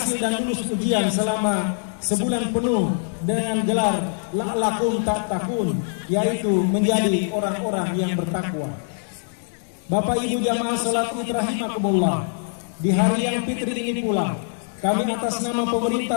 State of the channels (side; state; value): right; silent; digital silence